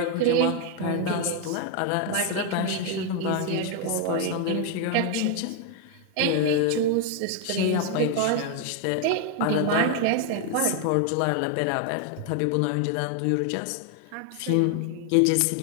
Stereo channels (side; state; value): both; different; correlation 0.01